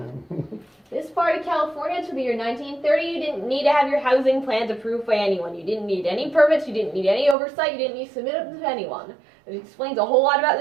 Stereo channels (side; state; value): left; drops out; at 7.4 s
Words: This part of California, to the year 1930, you didn't need to have your housing plans approved by anyone. You didn't need any permits, you didn't need any oversight, you didn't need to submit them to anyone. It explains a whole lot about